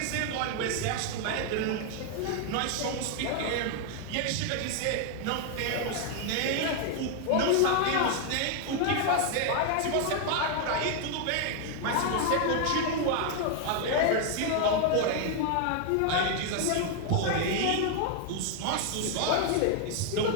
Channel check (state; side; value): different; both; correlation 0.00